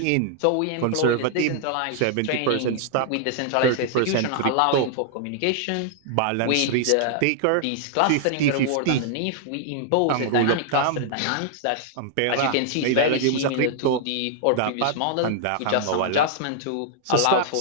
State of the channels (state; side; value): different; both; correlation -0.01